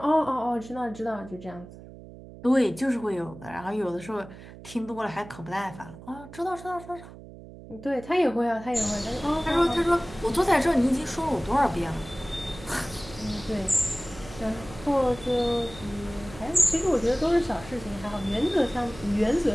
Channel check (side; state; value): right; noise; hum, 16 dB below the sound